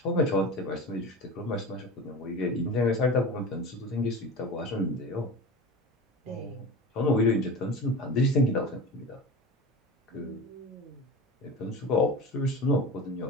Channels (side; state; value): both; normal; correlation 0.31